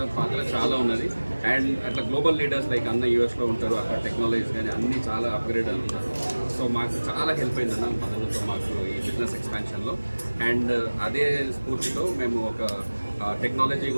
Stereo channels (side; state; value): both; inverted; correlation -1.00